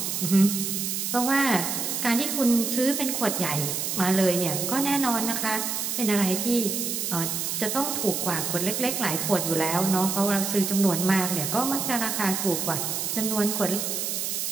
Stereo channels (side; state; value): right; noise; hiss, 2 dB below the sound